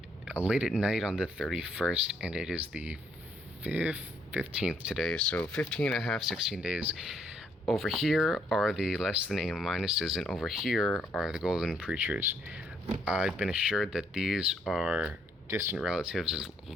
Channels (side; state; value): both; normal; correlation 0.70